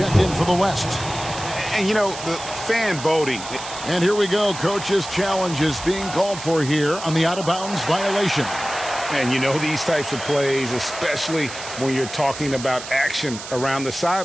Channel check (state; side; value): noise; right; hiss, 11 dB below the sound